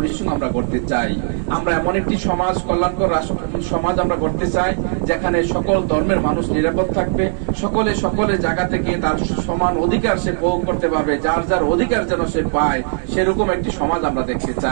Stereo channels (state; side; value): silent; left; digital silence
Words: আমরা করতে চাই। আমরা এমন একটি সমাজ, কল্যাণকর সমাজ আমরা করতে চাই যেখানে সকল ধর্মের মানুষ নিরাপদ থাকবে, সকলের জায়গা থেকে তার সমান অধিকার সে ভোগ করতে পারবে, যার যার অধিকার যেন সে পায়, সেরকম একটি সমাজ আমরা দেখতে